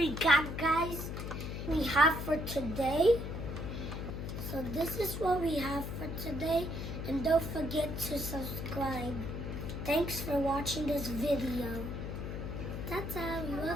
got, guys. We have for today. So this is what we have for today. And don't forget to subscribe. Thanks for watching this video. Ta-ta, we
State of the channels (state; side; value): noise; left; hum, 5 dB below the sound